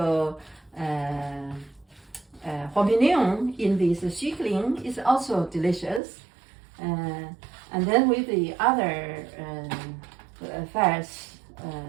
champignon in this xikling, it's also delicious. And then with the other fats,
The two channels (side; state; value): left; drops out; at 6.0 s